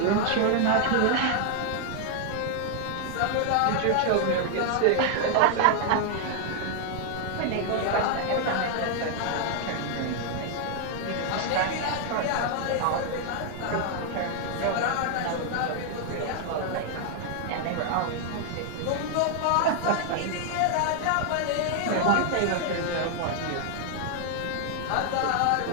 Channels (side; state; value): both; different; correlation 0.00